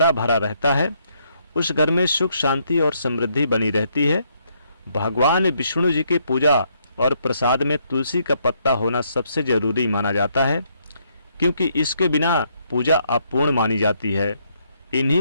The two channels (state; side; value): inverted; both; correlation -0.72